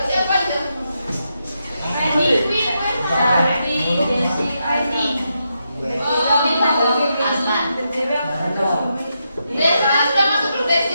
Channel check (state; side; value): inverted; both; correlation -0.84